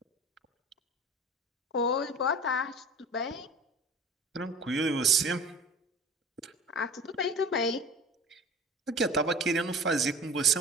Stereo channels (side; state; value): both; normal; correlation 0.40